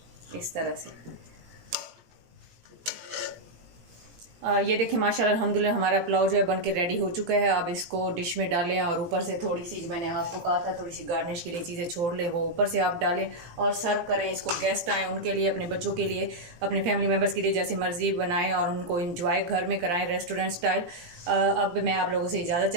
इस तरह से। ये देखिए माशाल्लाह अल्हम्दुलिल्लाह हमारा पुलाव जो है बनके रेडी हो चुका है। अब इसको डिश में डालें और ऊपर से थोड़ी सी, जो मैंने आपको कहा था थोड़ी सी गार्निश के लिए चीज़ें छोड़ लें, वो ऊपर से आप डालें और सर्व करें। इसको गेस्ट आएँ उनके लिए, अपने बच्चों के लिए, अपने फैमिली मेम्बर्स के लिए जैसे मर्जी बनाएं और उनको एंजॉय घर में कराएं रेस्टोरेंट स्टाइल। अब मैं आप लोगों से इजाज़त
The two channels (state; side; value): late; left; 17 ms